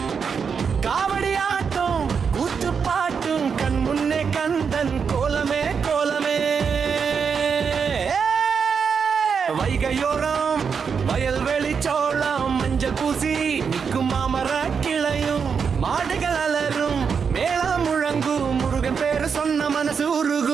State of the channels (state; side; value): quieter; left; 6.2 dB